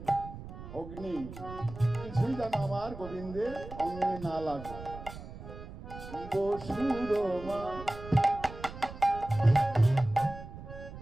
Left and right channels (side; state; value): right; noise; rumble, 13 dB below the sound